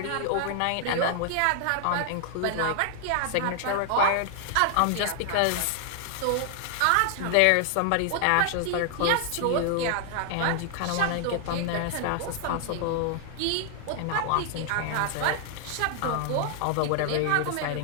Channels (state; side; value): different; both; correlation 0.00